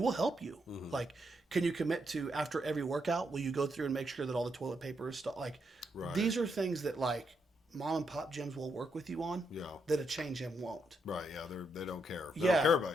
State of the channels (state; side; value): normal; both; correlation 0.79